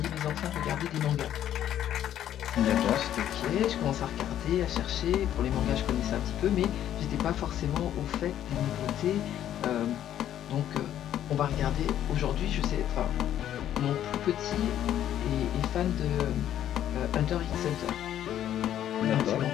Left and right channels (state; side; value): quieter; right; 11.1 dB